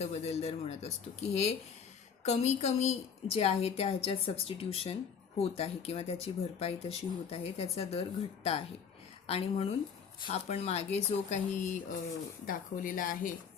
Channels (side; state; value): right; quieter; 6.7 dB